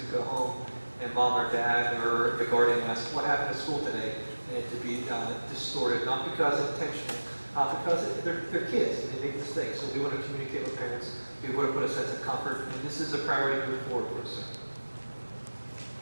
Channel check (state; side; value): inverted; both; correlation -1.00